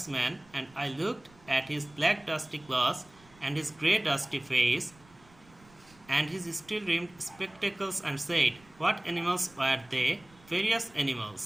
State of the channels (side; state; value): right; noise; rumble, 27 dB below the sound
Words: and I looked at his black dusty clothes and his grey dusty face and his steel-rimmed spectacles and said, What animals were they? Various animals,